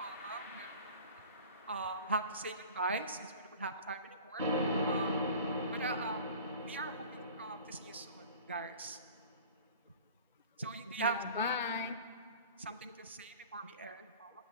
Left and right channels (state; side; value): inverted; both; correlation -0.41